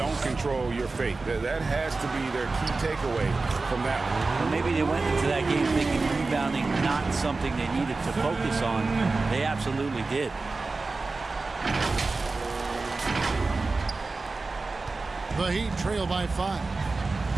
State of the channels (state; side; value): quieter; left; 3.7 dB